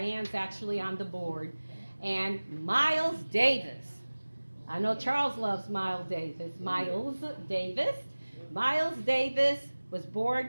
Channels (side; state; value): both; inverted; correlation -1.00